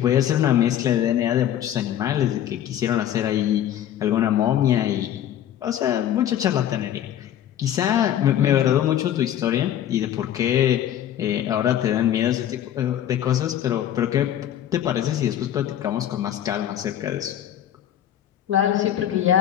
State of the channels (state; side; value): quieter; right; 10.9 dB